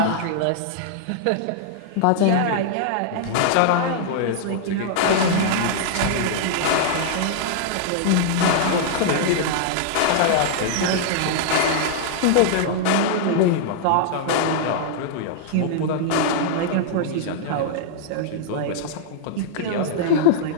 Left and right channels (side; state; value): both; different; correlation -0.01